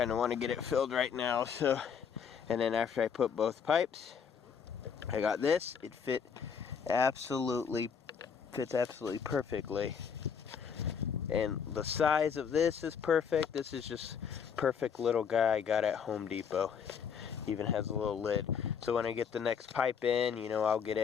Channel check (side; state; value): right; quieter; 6.9 dB